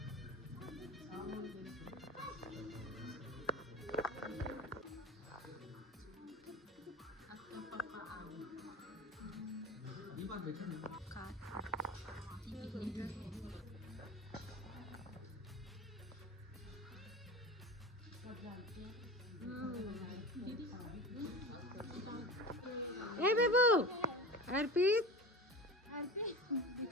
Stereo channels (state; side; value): normal; both; correlation 0.32